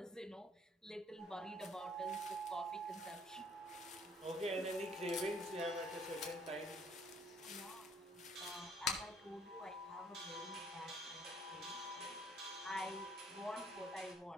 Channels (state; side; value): normal; both; correlation 0.61